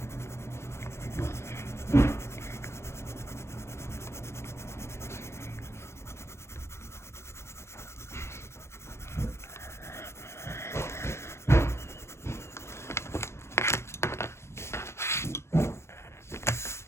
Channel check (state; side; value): late; right; 0.13 ms